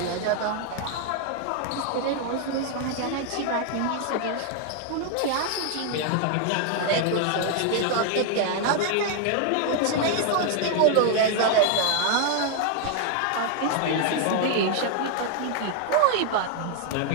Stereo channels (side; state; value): both; different; correlation 0.00